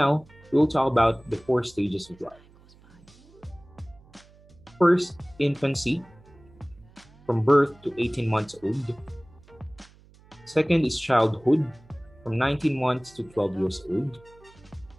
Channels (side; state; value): right; noise; hum, 26 dB below the sound